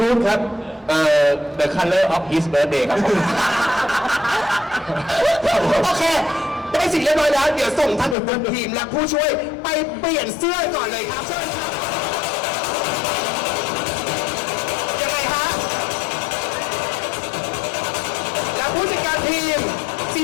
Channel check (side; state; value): right; drops out; at 8.2 s